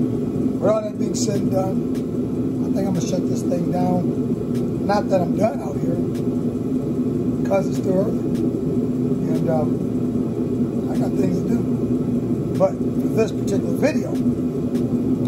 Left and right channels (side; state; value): both; identical; correlation 1.00